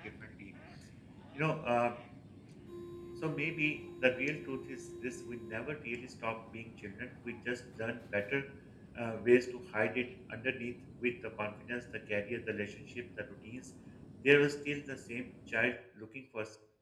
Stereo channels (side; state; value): both; identical; correlation 1.00